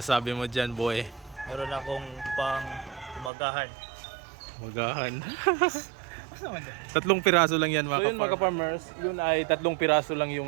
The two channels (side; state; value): left; drops out; at 3.3 s